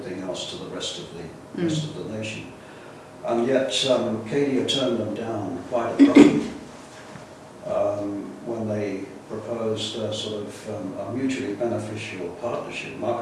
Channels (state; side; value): identical; both; correlation 1.00